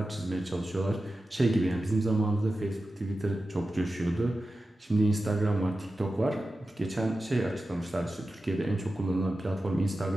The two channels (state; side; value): normal; both; correlation 0.93